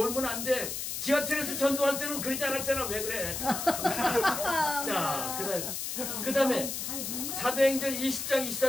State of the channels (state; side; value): noise; left; hiss, 4 dB below the sound